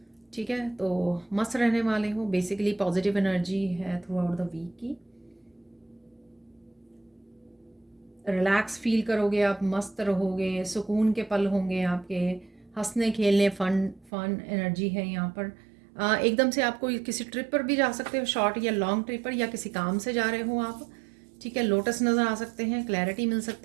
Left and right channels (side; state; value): left; drops out; at 14.1 s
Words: ठीक है। तो मस्त रहने वाले हो, बेसिकली पॉजिटिव एनर्जी है थ्रू आउट द वीक की। रिलैक्स फील करोगे आप, मस्त रहोगे, सुकून के पल होंगे आपके, हंसने खेलने, फन फन एनर्जी है यहाँ पर। एकदम से आपको किसी ट्रिप पर भी जा सकते हो, शॉर्ट या लॉन्ग ट्रिप पर, या किसी काम से जा रहे हो आप, ठीक है। लोटस नज़र आ सकते हैं, क्लैरिटी मिल